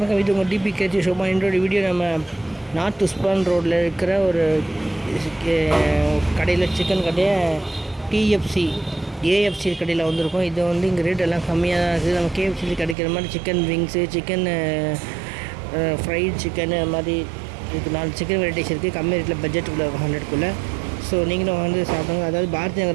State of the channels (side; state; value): left; drops out; at 13.0 s